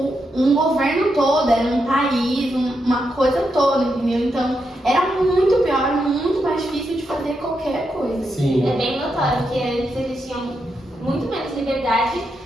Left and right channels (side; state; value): both; normal; correlation 0.84